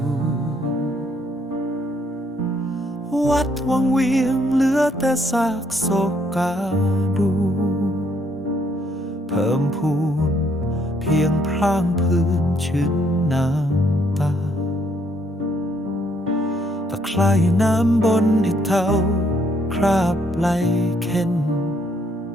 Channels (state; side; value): normal; both; correlation 0.69